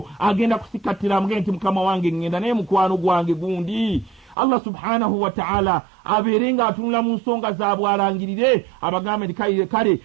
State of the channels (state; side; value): drops out; left; at 4.4 s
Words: agenda kusikattira amugende nti mukama wange ngenda naye mukwano gwange gundi. Allah subhanahu wa ta'ala abeere ng'atunula mu nsonga zaabwe alangirire abagambe nti kale